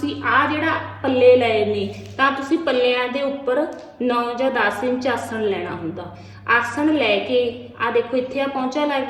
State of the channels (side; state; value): both; identical; correlation 1.00